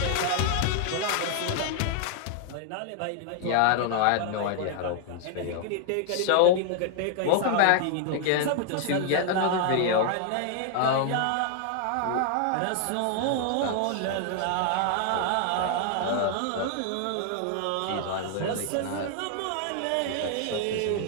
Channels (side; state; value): both; different; correlation 0.00